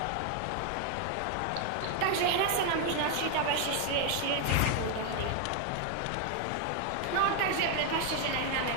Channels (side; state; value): both; different; correlation 0.01